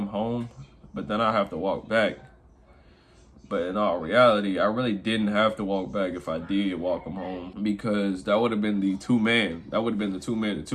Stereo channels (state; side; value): identical; both; correlation 1.00